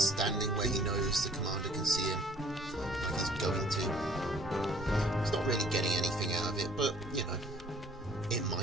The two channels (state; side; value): normal; both; correlation 0.56